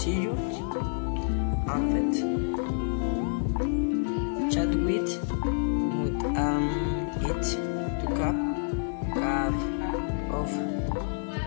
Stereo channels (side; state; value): right; silent; 59 dB below the other